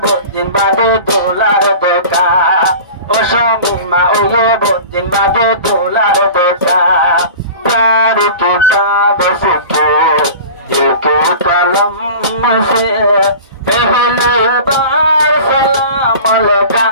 बहुत दिन बाद डॉलर देखा ओ शमीमा ओ ये बहुत दिन बाद डॉलर देखा प्यार की कागज को दिल के कलम से पहली बार सलाम लगा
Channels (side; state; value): both; inverted; correlation -0.38